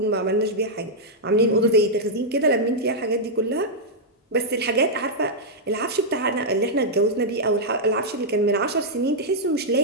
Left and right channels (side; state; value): both; normal; correlation -0.06